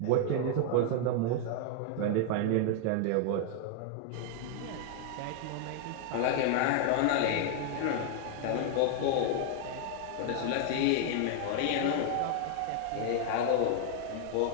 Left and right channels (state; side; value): different; both; correlation 0.00